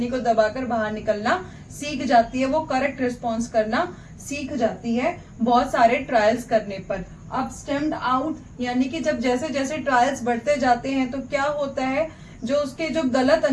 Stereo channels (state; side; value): identical; both; correlation 1.00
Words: को दबाकर बाहर निकलना सीख जाती है, वो करेक्ट रिस्पॉन्स करना सीख जाती है बहुत सारे ट्रायल्स करने पर। अब स्टेम्ड आउट यानी कि जब जैसे जैसे ट्रायल्स बढ़ते जाते हैं तो क्या होता है, जो उसके जो गलत